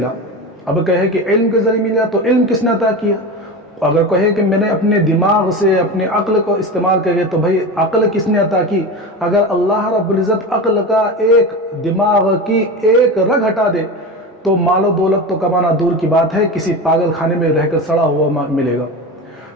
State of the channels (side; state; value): both; normal; correlation 0.25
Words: اب کہے کہ علم کے ذریعے ملا تو علم کس نے عطا کیا. اگر کہے کہ میں نے اپنے دماغ سے اپنے عقل کو استعمال کرے تو بھئی عقل کس نے عطا کی. اگر اللہ رب العزت عقل کا ایک دماغ کی ایک رگ ہٹا دے تو مال و دولت تو کمانا دور کی بات ہے، کسی پاگل خانے میں رہ کر سڑا ہوا ملے گا.